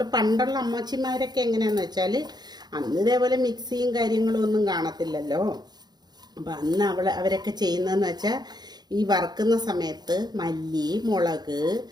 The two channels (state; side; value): late; left; 0.20 ms